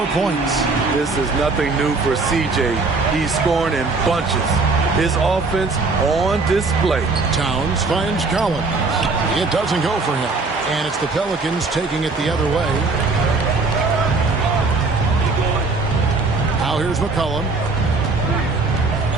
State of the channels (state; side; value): quieter; left; 3.8 dB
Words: points. This is nothing new for CJ. He's scoring in bunches. His offense on display. Towns finds Collins. It doesn't go for him. And it's the Pelicans taking it the other way. Now here's McCollum.